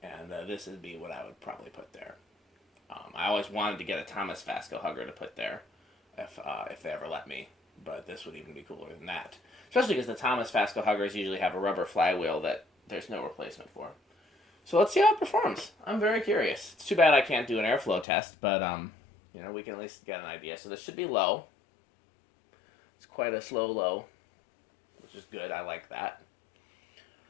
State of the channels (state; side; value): drops out; right; at 18.1 s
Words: And this would be what I would probably put there. I always wanted to get a Thomas Vasco Hugger to put there if they ever let me. But this would even be cooler than that. Especially because the Thomas Vasco Huggers usually have a rubber flywheel that there's no replacement for. So let's see how it performs. I'm very curious. It's too bad I can't do an airflow test, but we can at least get an idea. So this should be low. It's quite a slow low, which is good. I like that.